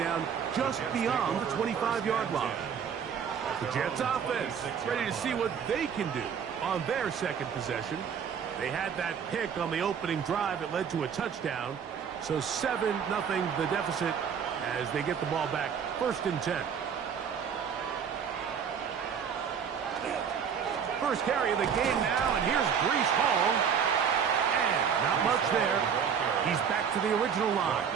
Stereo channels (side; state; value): left; quieter; 7.3 dB